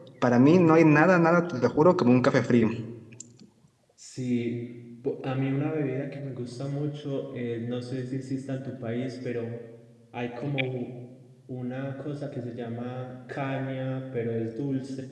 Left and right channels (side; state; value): both; identical; correlation 1.00